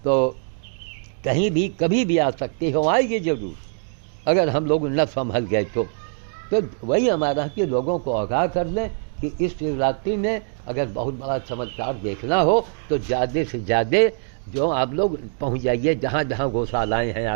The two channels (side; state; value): left; silent; 63 dB below the other